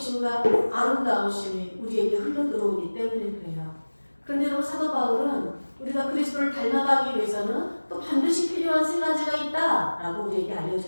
아름다우심이 우리에게 흘러들어오기 때문에 그래요. 그런데 여러분, 사도 바울은 우리가 그리스도를 닮아가기 위해서는 또 반드시 필요한 세 가지가 있다라고 우리에게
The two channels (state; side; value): inverted; both; correlation -1.00